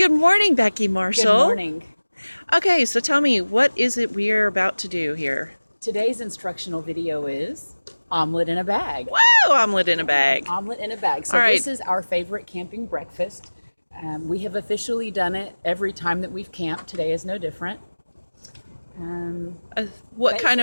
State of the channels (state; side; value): inverted; both; correlation -1.00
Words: morning, Becky Marshall. Good morning. Okay, so tell me, what is it we're about to do here? Today's instructional video is omelet in a bag. Whoa, omelet in a bag. Omelet in a bag. So All right. This is our favorite camping breakfast. We have officially done it every time that we've camped. Today is no different. What kind